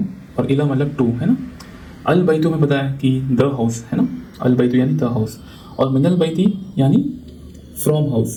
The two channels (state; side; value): identical; both; correlation 1.00